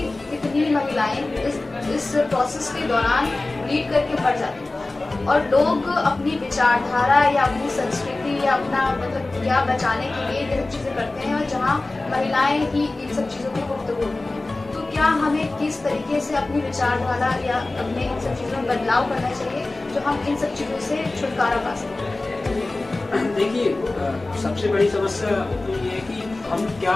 कितनी महिलाएं इस प्रोसेस के दौरान ब्लीड करके मर जाती हैं और लोग अपनी विचारधारा या अपनी संस्कृति या अपना मतलब क्या बचाने के लिए ये सब चीजें करते हैं और जहाँ महिलाएं ही इन सब चीजों की गुफ्तगू होती हैं। तो क्या हमें किस तरीके से अपनी विचारधारा या अपने इन सब चीजों में बदलाव करना चाहिए जो हम इन सब चीजों से छुटकारा पा सकें? देखिए, सबसे बड़ी समस्या तो ये है कि हम क्या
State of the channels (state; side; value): quieter; right; 3.0 dB